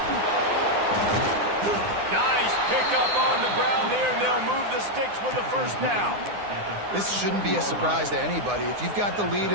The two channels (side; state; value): left; late; 9.8 ms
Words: Nice pickup on the ground there. They'll move the sticks with the first down. This shouldn't be a surprise to anybody. If you've got the lead